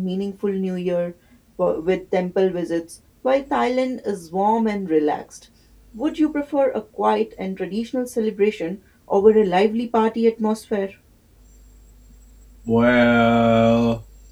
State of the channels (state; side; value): identical; both; correlation 1.00